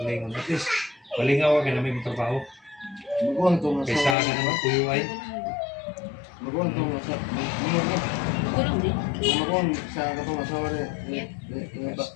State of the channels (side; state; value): right; drops out; at 4.2 s